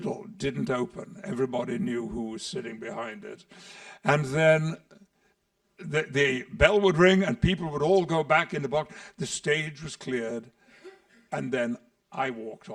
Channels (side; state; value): both; identical; correlation 1.00